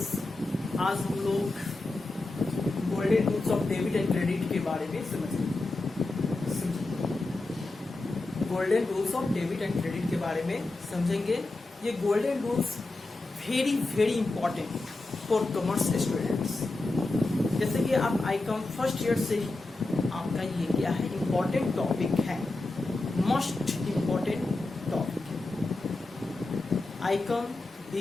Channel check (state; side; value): quieter; right; 3.0 dB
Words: आज हम लोग golden rules of debit and credit के बारे में समझेंगे। Golden rules of debit and credit के बारे में समझेंगे। ये golden rules very very important for commerce students. जैसे कि आप आईकॉम फर्स्ट ईयर से ही आपका ये क्या है, इम्पॉर्टेंट टॉपिक है, मोस्ट इम्पॉर्टेंट टॉपिक है। आईकॉम,